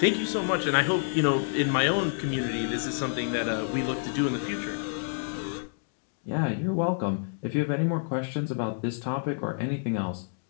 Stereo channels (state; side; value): silent; right; digital silence